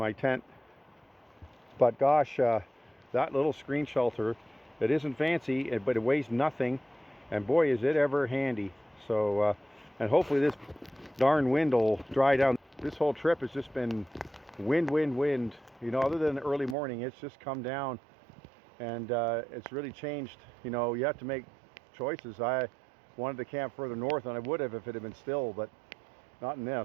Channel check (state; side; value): drops out; left; at 16.8 s